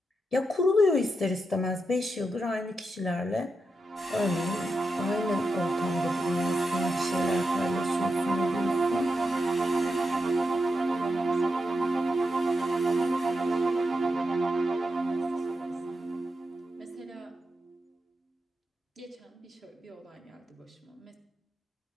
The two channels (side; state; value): both; normal; correlation 0.87